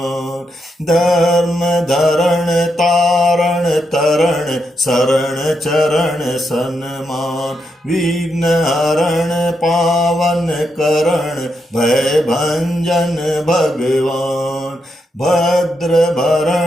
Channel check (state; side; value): normal; both; correlation 0.82